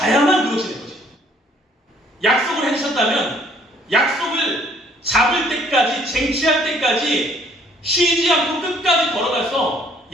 그것이 될 것입니다. 약속을 해주셨다면 약속을 잡을 때까지, 쟁취할 때까지 쉬지 않고 끝까지 걸어가서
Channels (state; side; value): normal; both; correlation 0.61